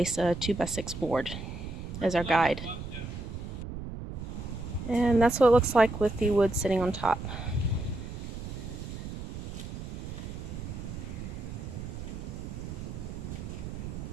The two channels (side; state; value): right; noise; rumble, 8 dB below the sound